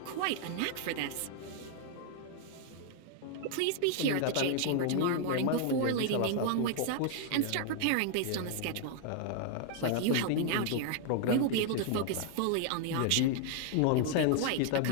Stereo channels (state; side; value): different; both; correlation 0.00